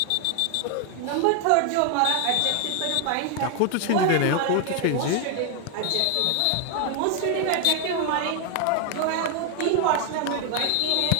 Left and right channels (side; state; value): both; different; correlation 0.01